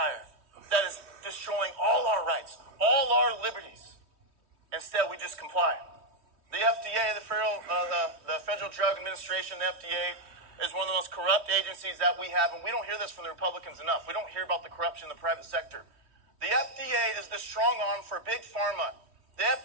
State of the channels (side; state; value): left; late; 3.1 ms